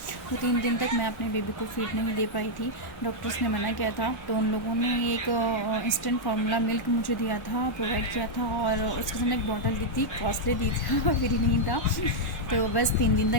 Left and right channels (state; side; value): late; right; 1.1 ms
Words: तो 3 दिन तक मैं अपने बेबी को फीड नहीं दे पाई थी, डॉक्टर्स ने मना किया था। तो उन लोगों ने एक इंस्टेंट फार्मूला मिल्क मुझे दिया था, प्रोवाइड किया था और उसके साथ एक बॉटल दी थी, कॉस्टली दी थी, फ्री नहीं था। तो बस 3 दिन